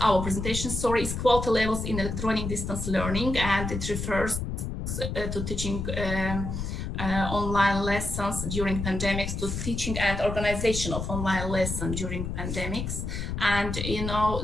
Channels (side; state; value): left; noise; rumble, 4 dB below the sound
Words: Levels in Electronic Distance Learning, and it refers to teaching online lessons during pandemics, to teaching and organization of online lessons during pandemics. And you know